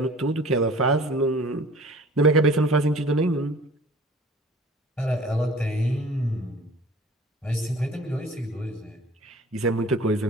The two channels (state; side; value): normal; both; correlation 0.46